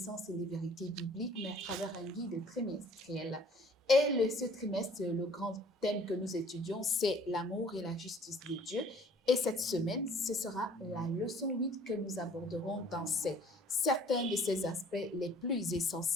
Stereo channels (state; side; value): normal; both; correlation 0.55